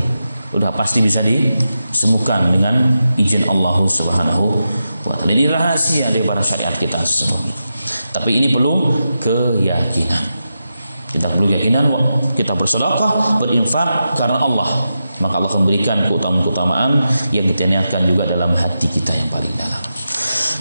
udah pasti bisa disembuhkan dengan izin Allah Subhanahu wa taala. Ini rahasia daripada syariat kita sesungguhnya. Tapi ini perlu keyakinan. Kita perlu keyakinan, kita bersedekah, berinfak karena Allah, maka Allah akan memberikan keutamaan-keutamaan yang kita niatkan juga dalam hati kita yang paling dalam.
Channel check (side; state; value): both; inverted; correlation -0.89